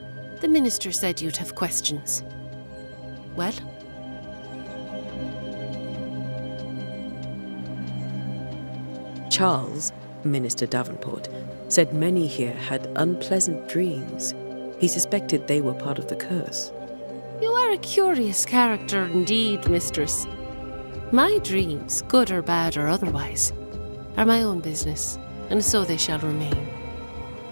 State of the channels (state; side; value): inverted; both; correlation -1.00